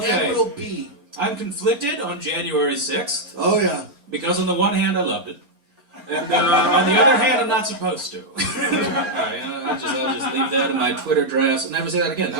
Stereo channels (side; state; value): left; late; 4.3 ms